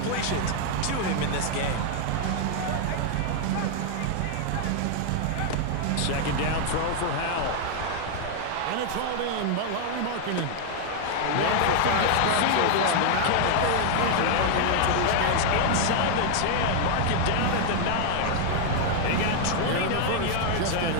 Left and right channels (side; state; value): both; different; correlation 0.00